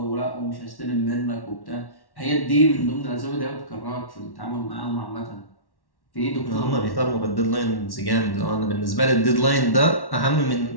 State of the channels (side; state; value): right; late; 1.1 ms